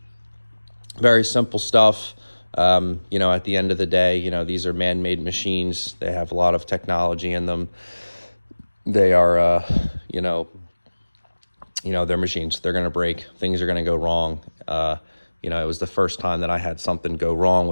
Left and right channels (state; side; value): inverted; both; correlation -1.00